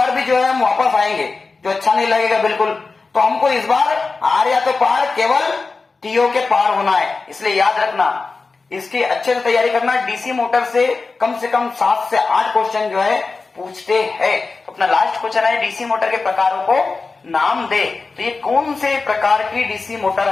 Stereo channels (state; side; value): quieter; right; 4.1 dB